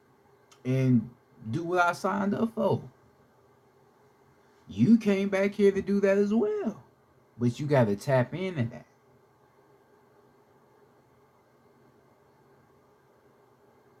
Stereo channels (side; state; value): both; identical; correlation 1.00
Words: and do what I signed up for. You came back here to do that as well. But you got to tap into that.